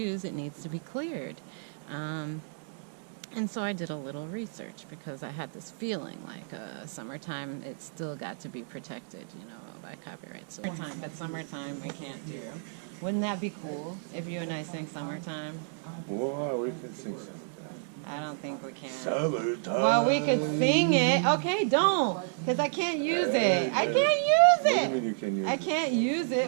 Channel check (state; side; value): silent; left; digital silence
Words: it needs to be cleared. And so I did a little research because I had this feeling like Summertime, it's still got to be protected, by copyright. So Summertime we can't do. Wouldn't that be cool if you and I sing Summertime? Well, we can sing Summertime. I don't think we can. Summertime. Well, we could sing it. Okay, don't, because I can't use it. I can't use What do you it. mean you can use I it? can't use